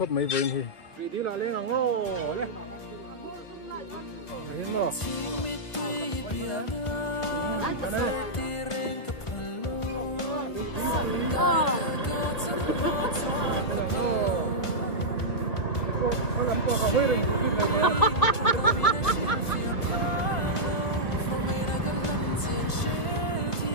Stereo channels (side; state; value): right; late; 1.5 ms